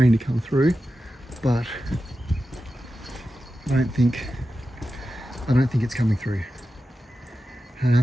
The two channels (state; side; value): normal; both; correlation 0.92